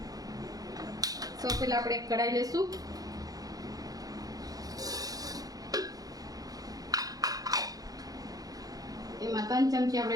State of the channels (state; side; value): late; left; 0.18 ms